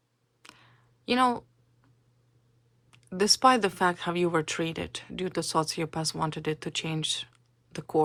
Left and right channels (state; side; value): identical; both; correlation 1.00